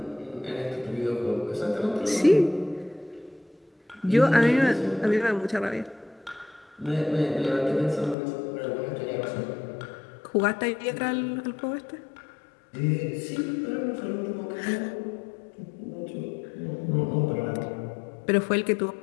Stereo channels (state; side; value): drops out; right; at 8.2 s